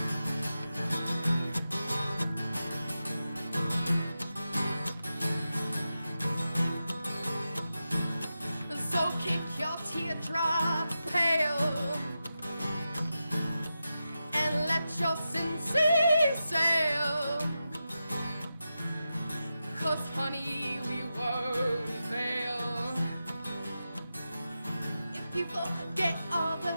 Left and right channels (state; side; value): inverted; both; correlation -0.90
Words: So kick your teardrop pale and let your sin sail. 'Cause honey, we won't fail. If you forget all